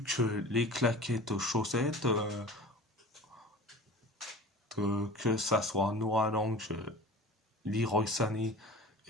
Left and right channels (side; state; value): both; normal; correlation 0.39